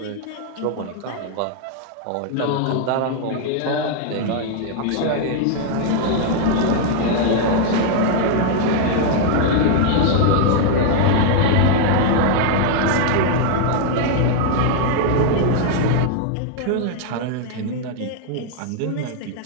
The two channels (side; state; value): both; different; correlation 0.00